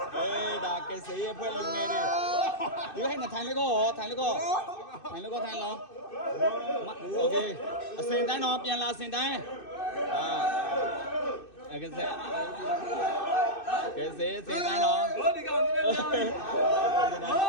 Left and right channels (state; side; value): late; right; 2.6 ms